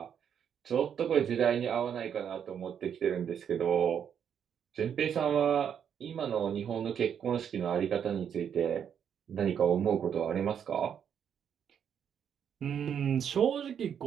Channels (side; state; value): left; quieter; 8.3 dB